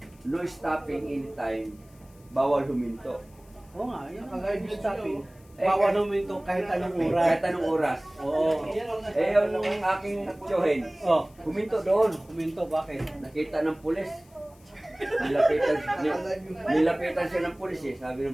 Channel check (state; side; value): noise; left; hiss, 29 dB below the sound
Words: no stopping anytime, bawal huminto. Oo nga, yun ang guide stopping. Bawal huminto kahit anong oras. Kahit anong oras. Oo. Yung aking tiyuhin, huminto doon. Huminto, bakit? Nakita ng pulis. Nilapitan siya ng pulis eh, sabi